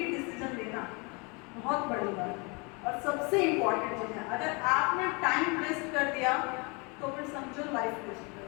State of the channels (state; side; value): quieter; right; 30.2 dB